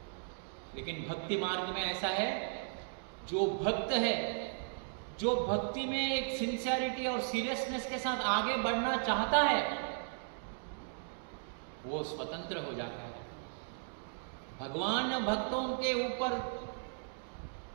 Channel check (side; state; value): left; silent; digital silence